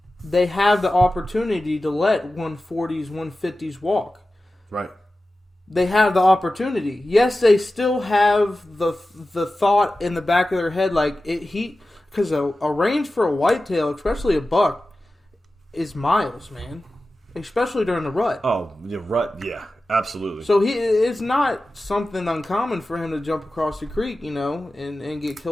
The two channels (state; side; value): normal; both; correlation 0.94